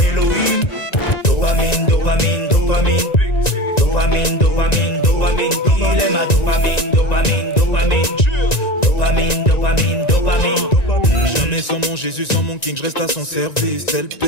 Dopamine, dopamine, dopamine. Dopamine, dopamine, dopamine. Il est ma dopamine, dopamine, dopamine. Dopamine, dopamine, dopamine. Jamais sans mon Jésus, sans mon King, je reste à son service. Tel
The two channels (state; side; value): late; right; 1.9 ms